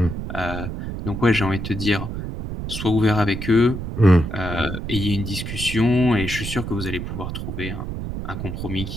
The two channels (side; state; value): right; noise; rumble, 6 dB below the sound